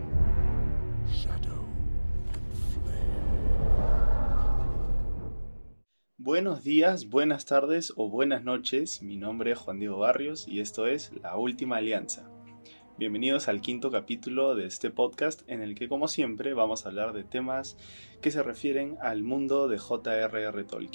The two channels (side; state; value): both; inverted; correlation -1.00